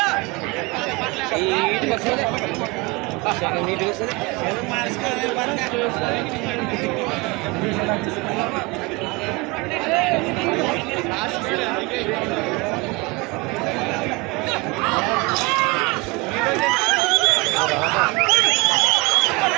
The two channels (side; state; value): left; quieter; 25.3 dB